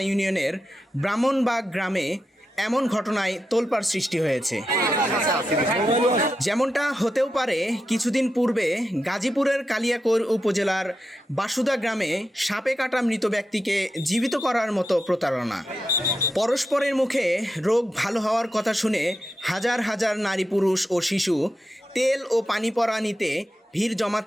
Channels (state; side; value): normal; both; correlation 0.88